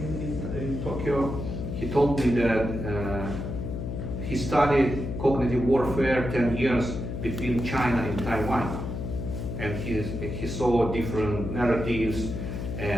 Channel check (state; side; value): noise; left; hum, 5 dB below the sound